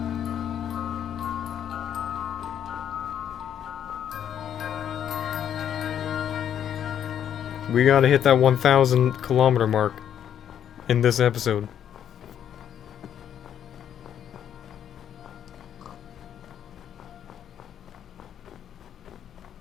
We gotta hit that 1,000 kilometer mark in this episode.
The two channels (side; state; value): right; quieter; 9.5 dB